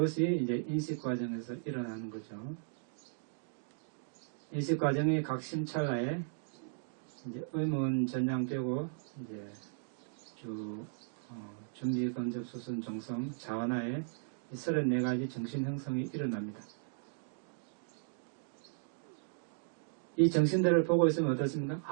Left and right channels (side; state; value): left; silent; digital silence